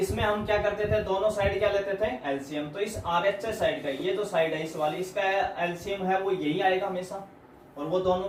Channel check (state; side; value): identical; both; correlation 1.00